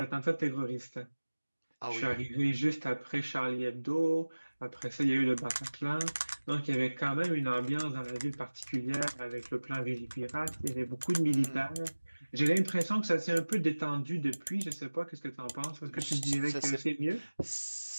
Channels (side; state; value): both; inverted; correlation -1.00